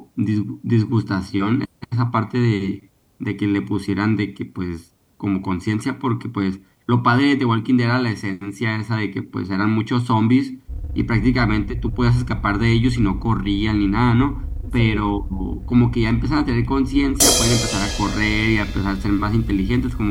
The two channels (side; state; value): both; identical; correlation 1.00